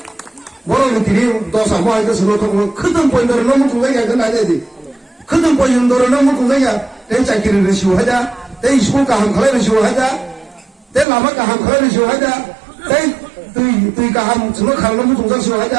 뭐라고 드리 도사 뭐 하니까 서로 통은 크던 보인도를 너무 궁상이야 그건 아니야 크던 보인도를 너무 궁상이야 내 짝기를 시우하자 내 이시골가 한 칼을 시우하자 내 라마가 한 칼을 시우하자 내 뜨이가 한 정말 칼을 너무 동상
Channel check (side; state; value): left; drops out; at 11.1 s